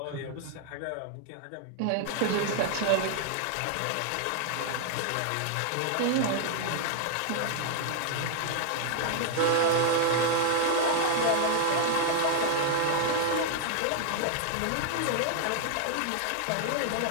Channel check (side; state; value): both; different; correlation 0.00